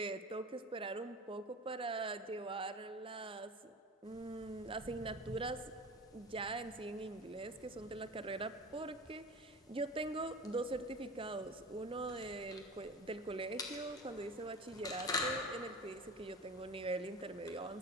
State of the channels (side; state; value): both; normal; correlation 0.34